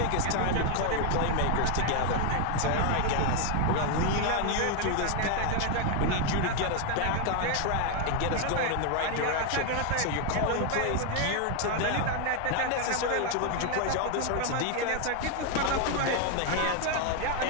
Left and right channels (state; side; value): different; both; correlation 0.01